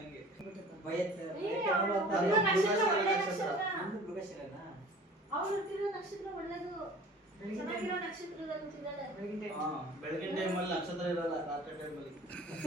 ನಕ್ಷತ್ರ ಒಳ್ಳೇದು. ಚೆನ್ನಾಗಿರೋ ನಕ್ಷತ್ರದಲ್ಲಿ ಹುಟ್ಟಿದಾಳೆ. ಬೆಳಗಿನ ಟೈಮಲ್ಲಿ ನಕ್ಷತ್ರ ಇರಲ್ಲ, ರಾತ್ರಿ ಟೈಮಲ್ಲಿ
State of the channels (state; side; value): normal; both; correlation 0.45